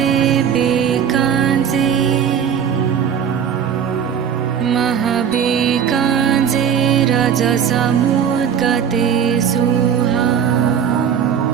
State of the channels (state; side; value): quieter; left; 8.2 dB